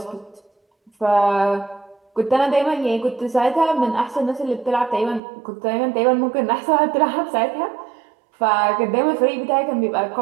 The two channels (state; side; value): drops out; left; at 5.2 s